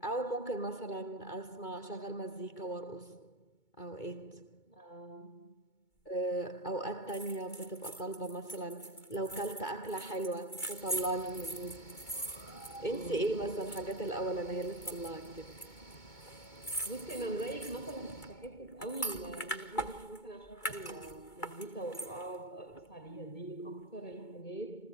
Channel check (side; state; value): right; late; 2.2 ms